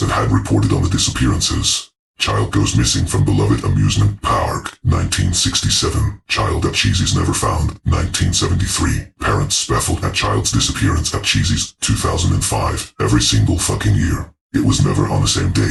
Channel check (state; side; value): identical; both; correlation 1.00